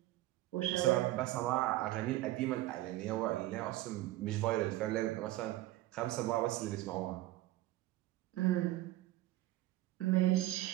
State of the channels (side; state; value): left; quieter; 16.4 dB